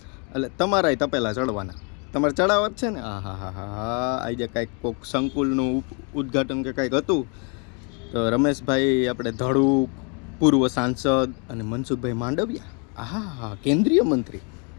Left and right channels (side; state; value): right; quieter; 35.9 dB